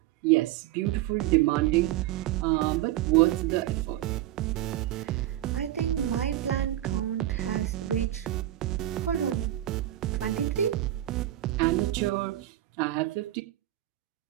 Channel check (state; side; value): quieter; left; 14.1 dB